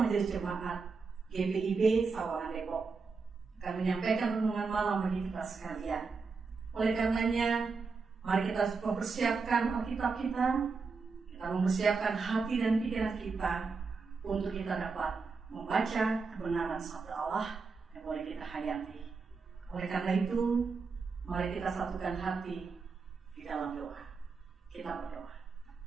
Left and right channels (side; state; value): left; quieter; 4.7 dB